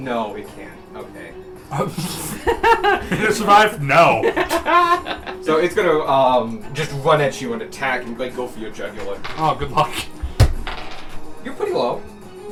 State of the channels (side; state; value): both; identical; correlation 1.00